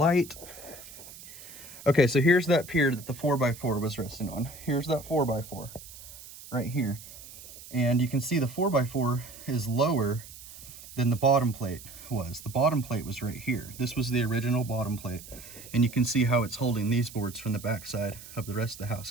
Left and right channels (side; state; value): right; noise; hiss, 16 dB below the sound